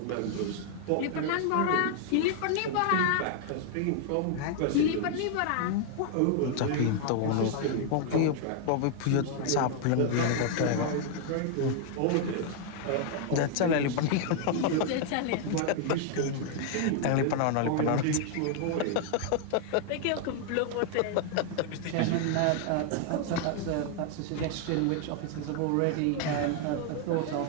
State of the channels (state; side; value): different; both; correlation 0.00